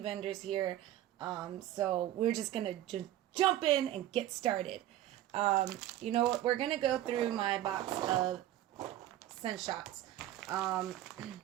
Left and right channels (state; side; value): quieter; left; 13.3 dB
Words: here, so we're just gonna jump in and get started. You know what? We're gonna go through my box of scent shots.